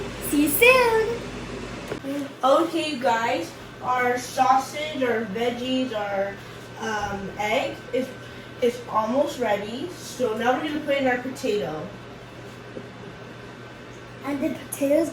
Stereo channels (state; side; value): identical; both; correlation 1.00